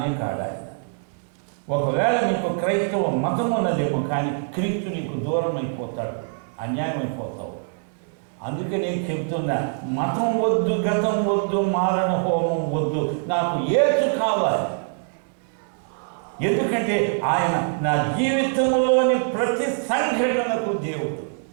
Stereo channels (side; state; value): left; silent; digital silence